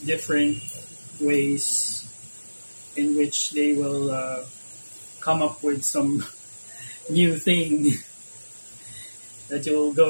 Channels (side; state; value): both; inverted; correlation -1.00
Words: different ways in which they will come up with some new thing that you'll